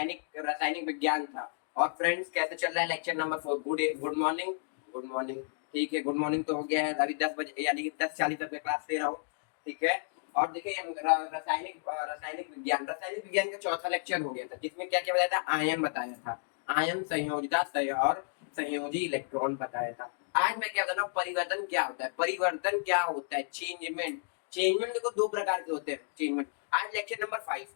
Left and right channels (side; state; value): right; silent; digital silence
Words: रासायनिक विज्ञान था। और फ्रेंड्स, कैसे चल रहा है lecture number 4। Good morning. Good morning. ठीक है, गुड मॉर्निंग तो हो गया है। अभी 10 बजे यानी कि 10:40 तक क्लास ले रहा हूँ। ठीक है। और देखिए, रासायनिक विज्ञान का चौथा लेक्चर हो गया था, जिसमें क्या क्या बताया था। आयन बताया था। आयन, संयोजिता और संयोजी इलेक्ट्रॉन बताया था। आज मैं क्या बता रहा हूँ, परिवर्तन क्या होता है। परिवर्तन क्या होता है, चेंजमेंट। चेंजमेंट देखो दो प्रकार के होते हैं। चेंजमेंट आज लेक्चर नंबर 5